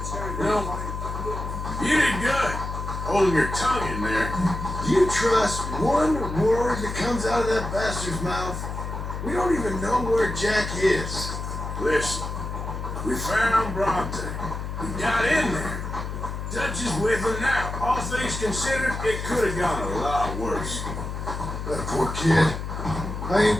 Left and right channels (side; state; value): left; noise; hum, 5 dB below the sound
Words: You know, you did good holding your tongue in there. Do you trust one word that comes out of that bastard's mouth? We don't even know where Jack is. Listen, we found Bronte. We got in there. Dutch is with him now. All things considered, it could have gone a lot worse. That poor kid. I